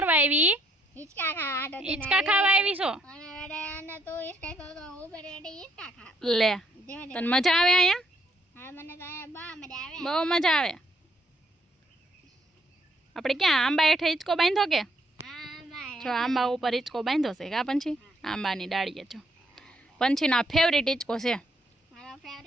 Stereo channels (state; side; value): normal; both; correlation 0.70